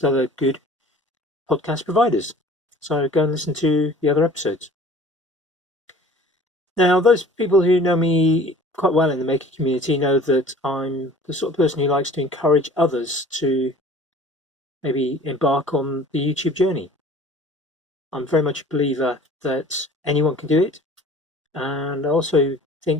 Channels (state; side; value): normal; both; correlation 0.47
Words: other good podcast providers. So go and listen to the other episodes. Now, those people who know me quite well in the maker community know that I'm the sort of person who likes to encourage others to maybe embark on the YouTube journey. I'm very much a believer that anyone can do it, and I also